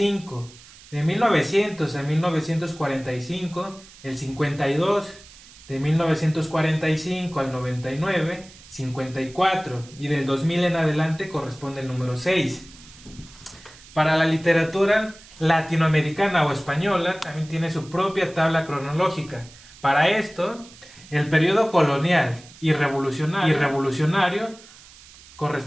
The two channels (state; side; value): noise; right; hiss, 21 dB below the sound